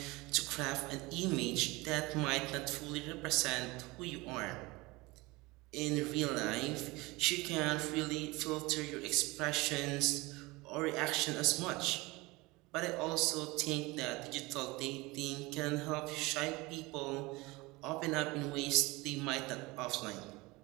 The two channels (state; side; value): quieter; left; 22.9 dB